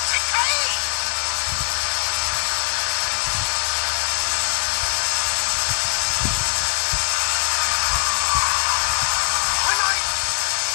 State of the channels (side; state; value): right; silent; digital silence